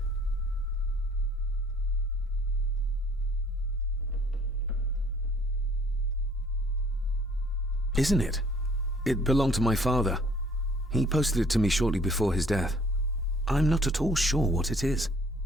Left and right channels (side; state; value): both; normal; correlation 0.58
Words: Isn't it? It belonged to my father. He posted it to me shortly before his death. I'm not at all sure what it is.